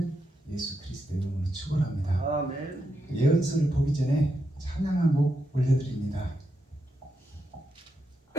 예수 그리스도의 이름으로 축원합니다. 아멘. 예언서를 보기 전에 찬양 한 곡 올려드립니다.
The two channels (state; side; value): normal; both; correlation 0.83